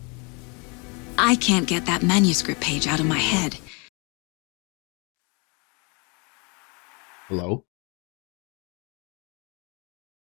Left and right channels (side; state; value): right; quieter; 31.7 dB